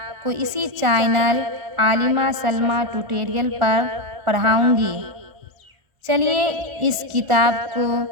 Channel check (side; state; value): left; late; 1.4 ms